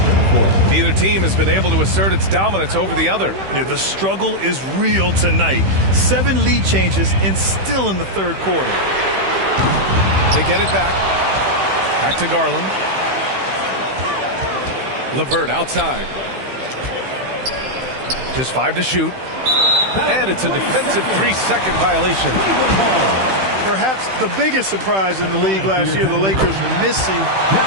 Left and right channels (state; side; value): late; left; 15 ms